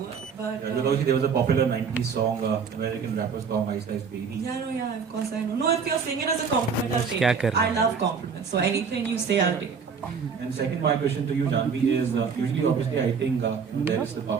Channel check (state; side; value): quieter; left; 6.0 dB